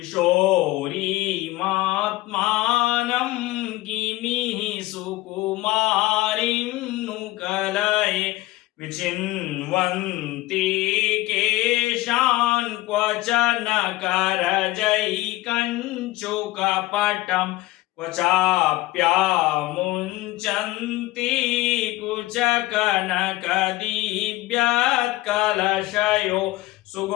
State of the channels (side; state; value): right; quieter; 18.3 dB